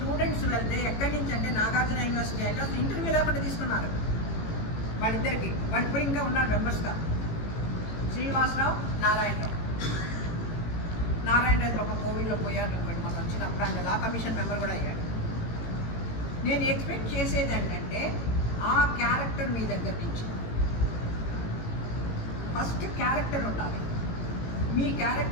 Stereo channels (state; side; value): late; right; 18 ms